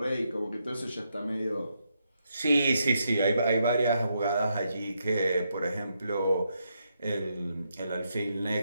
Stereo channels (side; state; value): both; inverted; correlation -0.80